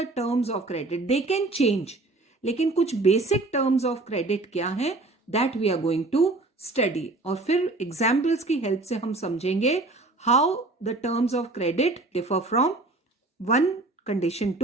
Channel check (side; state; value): left; quieter; 3.1 dB